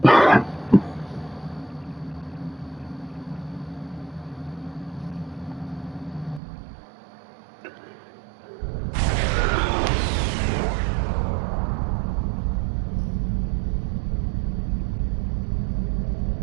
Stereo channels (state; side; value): drops out; left; at 6.4 s